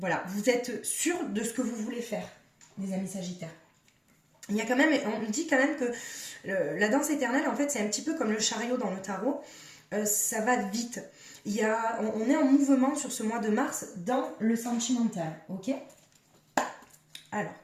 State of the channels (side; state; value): both; identical; correlation 1.00